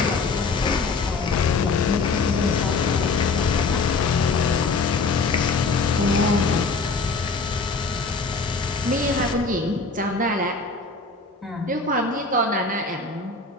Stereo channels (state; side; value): quieter; right; 4.0 dB